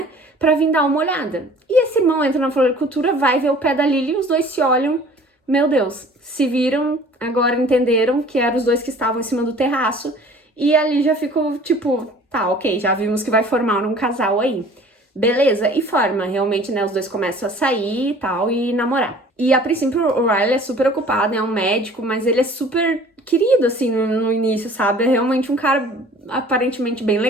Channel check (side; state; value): both; normal; correlation 0.49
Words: pra vir dar uma olhada. E esse irmão entra na floricultura, vai ver o pé da Lily e os dois se olham. Meu Deus, se viram, agora entenderam que eram os dois que estavam em cima do terraço. E ali já ficou tipo, tá, ok, já vimos que vai formar um casal aí. Beleza, e forma, realmente, né, os dois começam a sair e tal, e namorar. E a princípio o Riley é super ocupado, é um médico, mas ele é super querido, assim, no início, sabe? É realmente um cara aparentemente bem